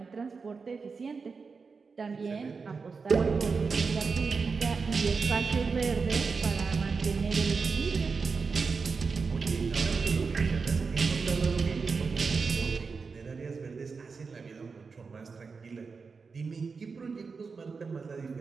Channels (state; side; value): quieter; left; 4.9 dB